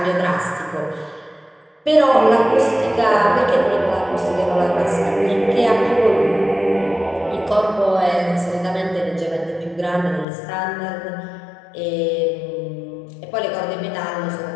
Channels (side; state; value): right; drops out; at 10.2 s